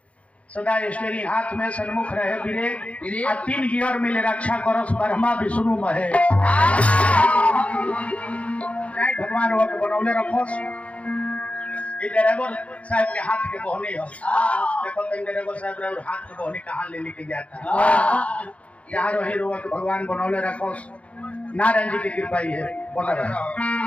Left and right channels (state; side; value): late; right; 0.064 ms